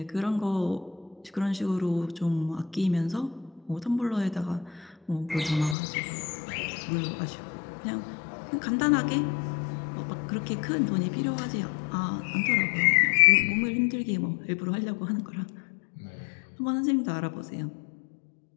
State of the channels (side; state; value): right; drops out; at 5.8 s